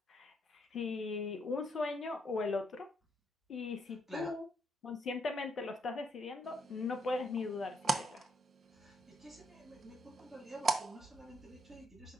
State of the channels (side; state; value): both; normal; correlation 0.75